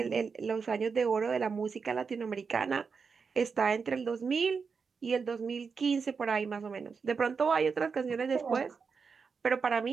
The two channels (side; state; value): left; quieter; 5.4 dB